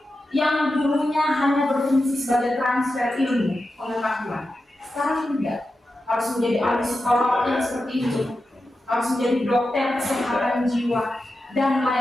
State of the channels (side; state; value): both; normal; correlation 0.91